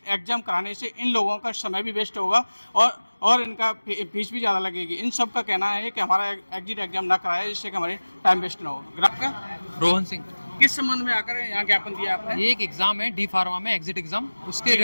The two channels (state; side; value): inverted; both; correlation -1.00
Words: एग्जाम कराने से इन लोगों का समय भी वेस्ट होगा और इनका फीस भी ज़्यादा लगेगी। इन सब का कहना है कि हमारा एग्जिट एग्जाम ना कराया, जिससे कि हमारे टाइम वेस्ट ना हो। आपका रोहन सिंह। किस संबंध में आकर यहाँ ज्ञापन दिया आपने? ये एक एग्जाम है डी फार्मा में, एग्जिट एग्जाम, उसके